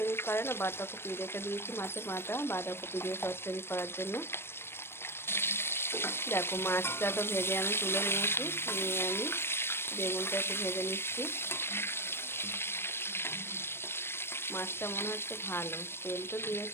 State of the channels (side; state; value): right; late; 0.12 ms